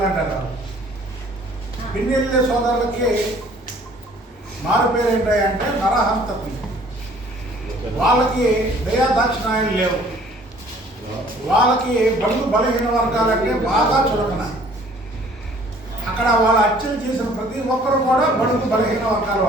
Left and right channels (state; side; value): normal; both; correlation 0.55